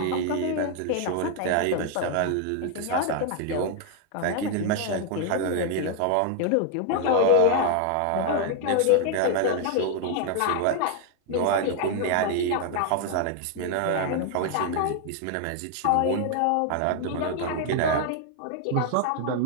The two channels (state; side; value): different; both; correlation 0.00